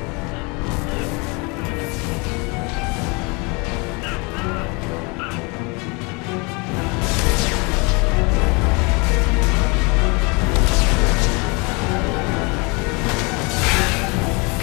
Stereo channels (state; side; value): quieter; right; 29.4 dB